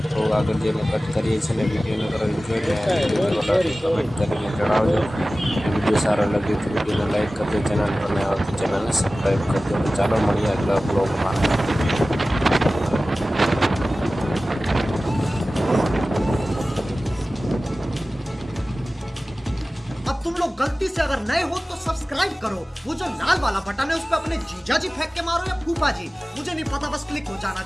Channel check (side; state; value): both; normal; correlation 0.97